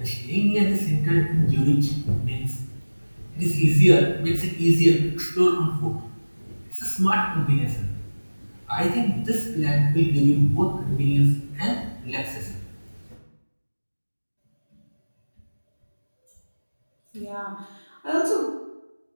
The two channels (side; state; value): both; inverted; correlation -1.00